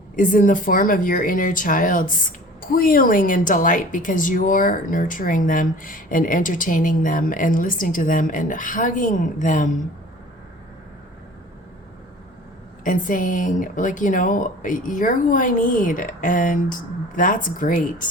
is in the form of your inner child squealing in delight because you're nurturing them and entertaining them and listening to them and hugging them. and saying, like, you know, you're who I need, and that's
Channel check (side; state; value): both; normal; correlation 0.44